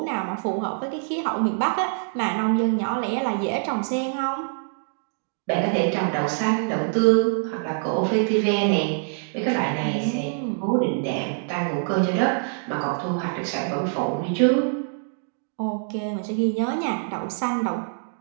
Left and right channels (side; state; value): left; silent; digital silence